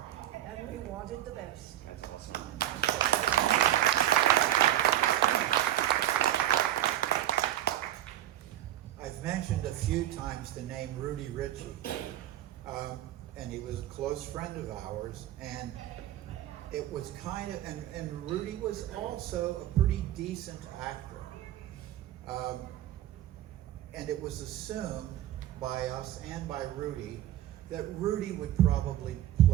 and we wanted the best. That's awesome. I've mentioned a few times the name Rudy Ritchie, and he was a close friend of ours, and it was kind of, and Rudy was also a pretty decent actor. And it was assumed by us and by Rudy that Rudy would probably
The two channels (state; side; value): quieter; left; 12.6 dB